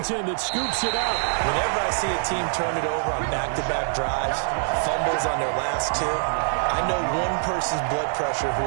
that scoops it up. Whenever I see a team turn it over on back-to-back drives, fumbles on their last two, I know one person's blood pressure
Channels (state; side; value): silent; left; digital silence